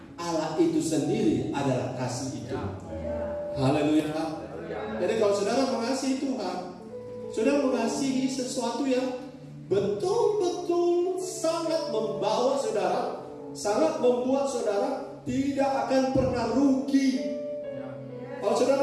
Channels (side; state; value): both; identical; correlation 1.00